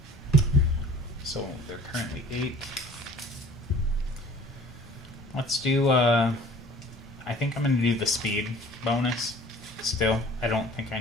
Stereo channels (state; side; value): normal; both; correlation 0.48